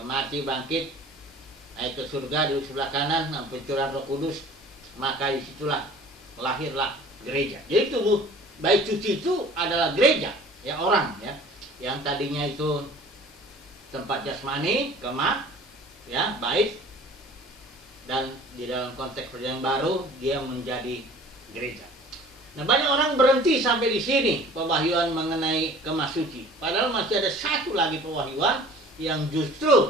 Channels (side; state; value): both; normal; correlation 0.47